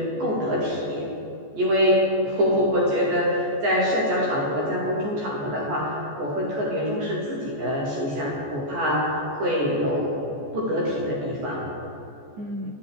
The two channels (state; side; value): late; left; 14 ms